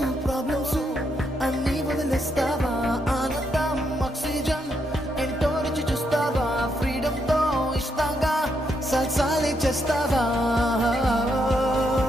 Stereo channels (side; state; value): both; normal; correlation 0.78